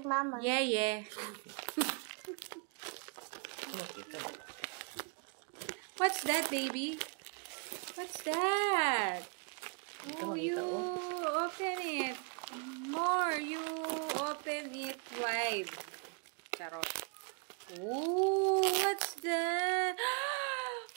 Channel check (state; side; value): quieter; left; 38.8 dB